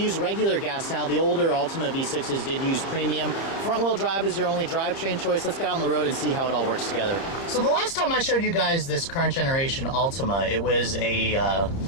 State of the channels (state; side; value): late; right; 30 ms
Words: regular gas now. The older Altima V6s did use premium. Front-wheel drive is your only drivetrain choice. Let's get out on the road and see how it all works together. So the last time I showed you guys this current generation Altima, it was a